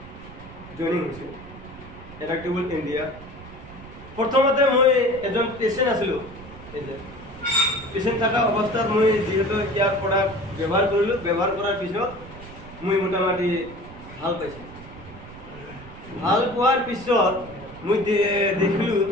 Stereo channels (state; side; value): noise; right; rumble, 17 dB below the sound